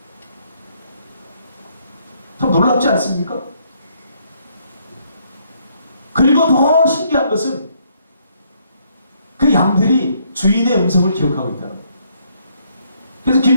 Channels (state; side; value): inverted; both; correlation -0.69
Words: 참 놀랍지 않습니까? 그리고 더 신기한 것은 그 양들이 주인의 음성을 기억하고 있다는 거예요. 그래서